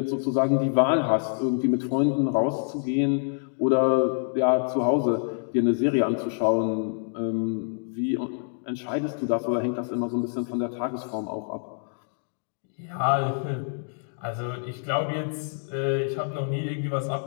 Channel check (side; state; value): right; silent; digital silence